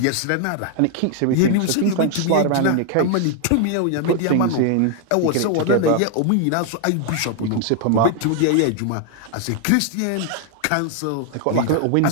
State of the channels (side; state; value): both; different; correlation 0.00